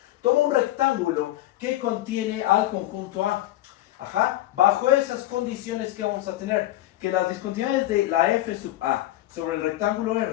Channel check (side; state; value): right; quieter; 15.3 dB